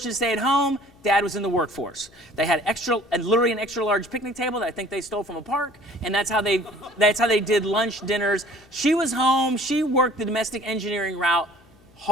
to stay at home. Dad was in the workforce. They had literally an extra large picnic table that I think they stole from a park, and that's how they did lunch, dinners. She was home. She worked the domestic engineering route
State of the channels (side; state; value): left; noise; hum, 29 dB below the sound